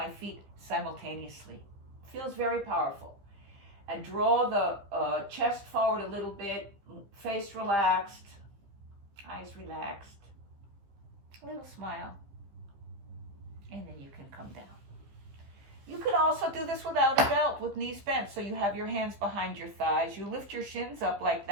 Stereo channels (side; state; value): left; late; 15 ms